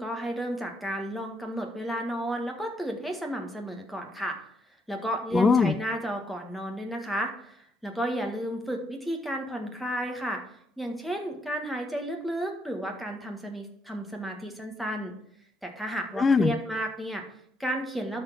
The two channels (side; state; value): both; normal; correlation 0.76